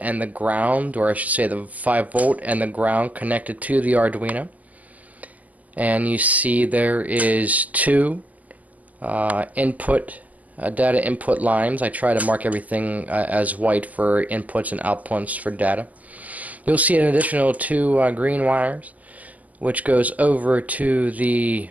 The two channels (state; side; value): late; left; 0.074 ms